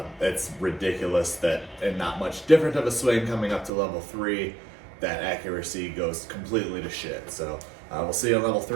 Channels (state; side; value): drops out; left; at 3.7 s